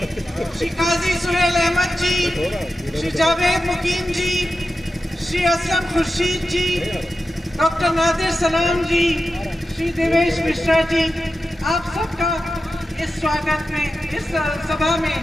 श्री काजी सुहेल अहमद जी, श्री जावेद मुकीम जी, श्री असलम खुर्शीद जी, डॉक्टर नादिर सलाम जी, श्री देवेश मिश्रा जी, आप सबका इस स्वागत में, इस सभा में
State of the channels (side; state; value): both; normal; correlation 0.91